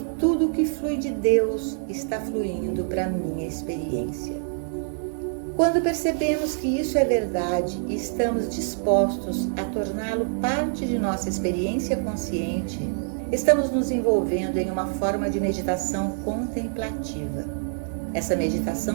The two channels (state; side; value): silent; left; digital silence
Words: tudo que flui de Deus está fluindo para a minha experiência. Quando percebemos que isso é verdade e estamos dispostos a torná-lo parte de nossa experiência consciente, estamos nos envolvendo em uma forma de meditação contemplativa. Essa